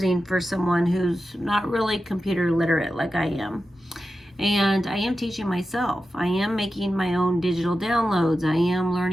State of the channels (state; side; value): normal; both; correlation 0.92